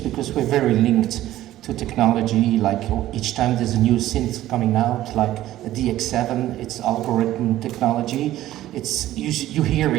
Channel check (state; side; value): quieter; left; 14.2 dB